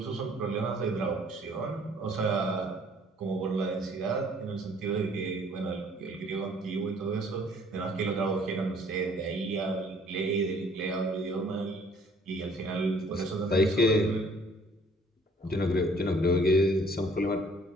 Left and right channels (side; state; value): both; normal; correlation 0.58